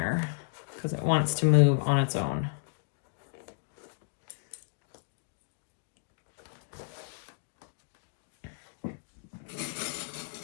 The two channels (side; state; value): right; silent; digital silence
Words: because it wants to move on its own.